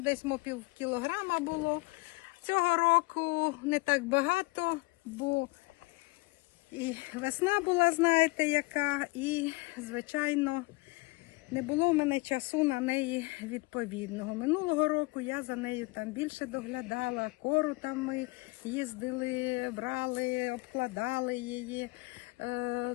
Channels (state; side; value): quieter; right; 24.9 dB